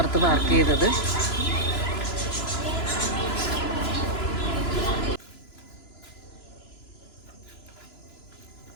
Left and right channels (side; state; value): right; late; 3.0 ms